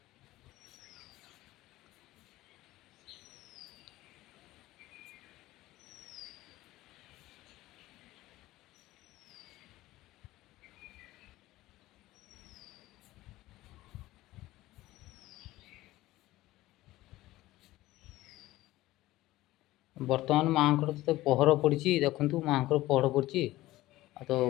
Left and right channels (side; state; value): right; quieter; 17.1 dB